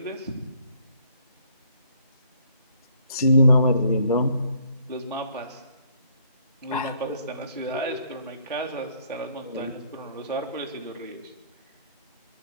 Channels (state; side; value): inverted; both; correlation -0.64